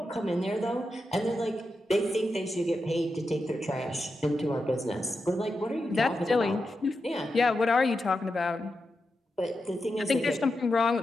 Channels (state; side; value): normal; both; correlation 0.88